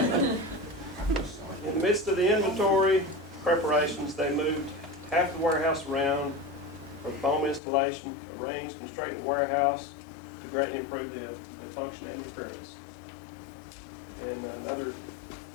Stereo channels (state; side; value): drops out; right; at 7.6 s